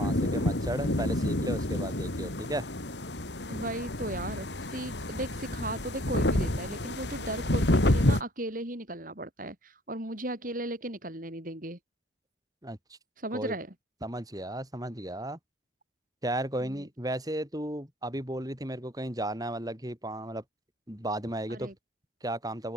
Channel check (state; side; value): normal; both; correlation 0.58